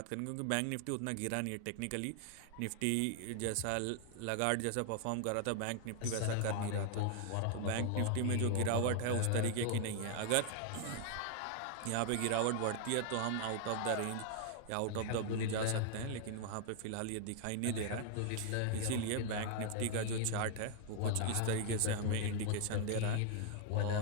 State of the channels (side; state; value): both; different; correlation 0.00